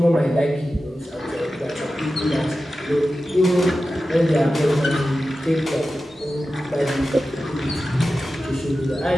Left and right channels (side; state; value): both; normal; correlation 0.93